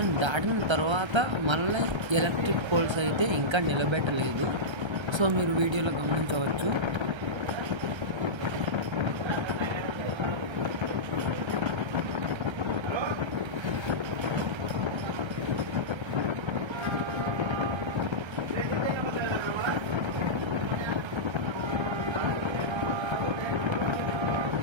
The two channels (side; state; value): left; late; 1.3 ms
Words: దాటిన తర్వాత మళ్ళీ ఎలక్ట్రిక్ పోల్స్ అయితే ఇంకా నిలబెట్టలేదు. సో మీరు వీడియోలో గమనించవచ్చు.